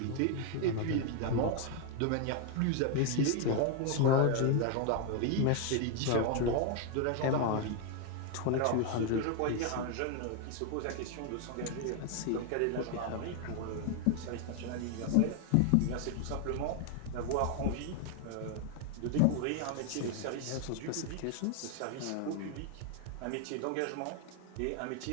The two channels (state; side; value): different; both; correlation 0.01